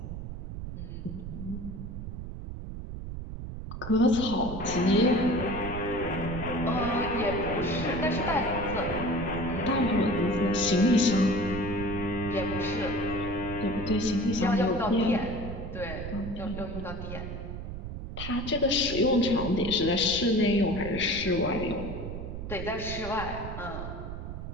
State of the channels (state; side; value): noise; right; rumble, 7 dB below the sound